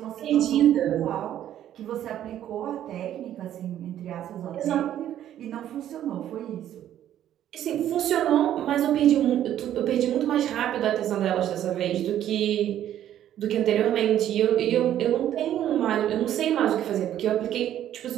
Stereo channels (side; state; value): left; quieter; 11.4 dB